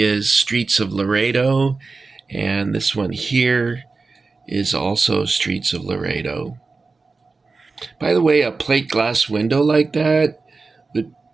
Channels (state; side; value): quieter; left; 4.0 dB